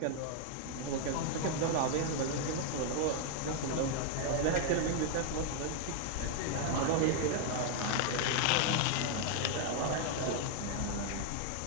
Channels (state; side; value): different; both; correlation 0.00